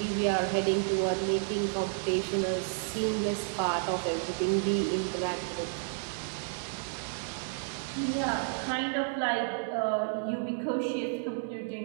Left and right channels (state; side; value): silent; left; digital silence